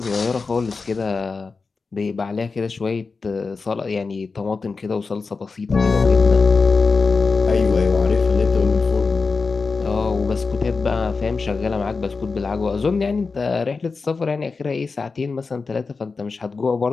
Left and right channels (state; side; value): quieter; right; 4.4 dB